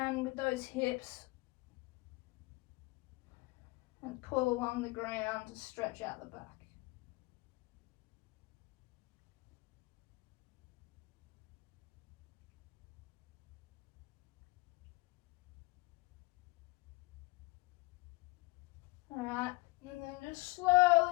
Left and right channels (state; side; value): quieter; right; 23.0 dB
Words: with those hips and pull along the ground to stretch out the back. Alright, and then just